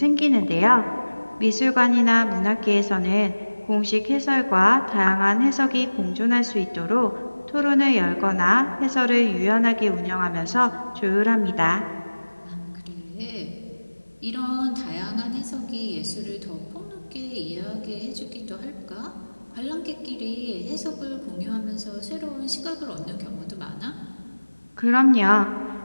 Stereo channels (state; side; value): inverted; both; correlation -1.00